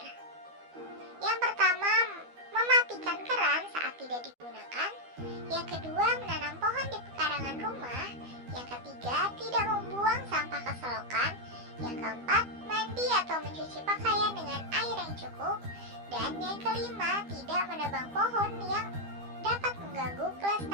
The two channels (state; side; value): late; left; 12 ms